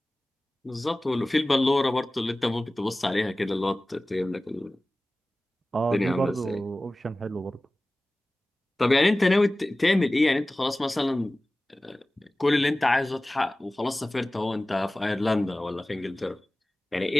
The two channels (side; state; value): both; normal; correlation 0.97